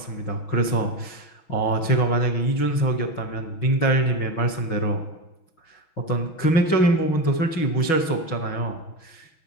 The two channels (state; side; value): late; right; 6.1 ms